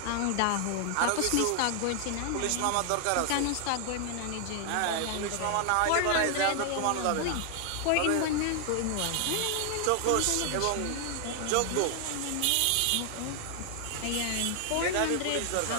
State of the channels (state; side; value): different; both; correlation 0.00